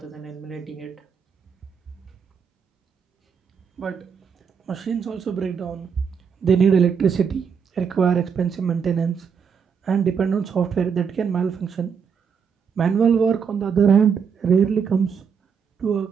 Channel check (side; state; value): left; quieter; 6.6 dB